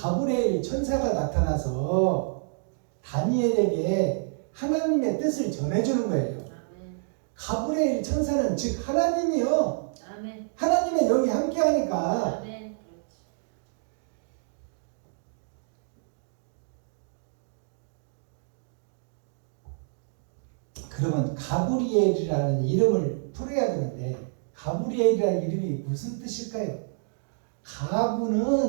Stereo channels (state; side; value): silent; left; digital silence